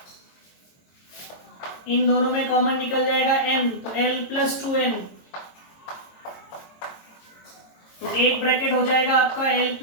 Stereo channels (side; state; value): right; late; 22 ms